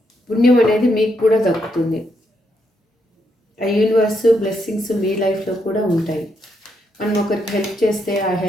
పుణ్యం అనేది మీకు కూడా దక్కుతుంది. ఆ యూనివర్స్ బ్లెస్సింగ్స్ మీ లైఫ్లో కూడా ఉంటాయి. మనం ఒకరికి హెల్ప్ చేస్తే ఆ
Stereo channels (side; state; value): both; normal; correlation 0.78